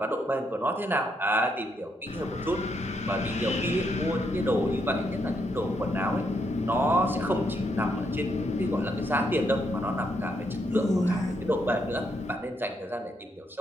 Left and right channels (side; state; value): both; normal; correlation 0.77